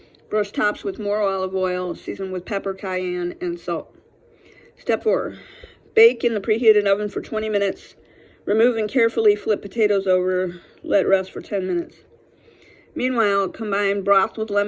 Brush tops with more olive oil, season with pepper, cayenne, and salt. Step 4. Bake in the preheated oven for 20 minutes. Remove and carefully flip potatoes over. Let rest for 10 minutes. Meanwhile, combine broth with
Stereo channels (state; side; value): identical; both; correlation 1.00